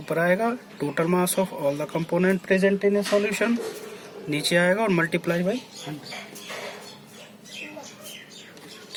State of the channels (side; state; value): both; identical; correlation 1.00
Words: आएगा, total mass of all the component present in a solution नीचे आएगा, और मल्टीप्लाई बाई 100।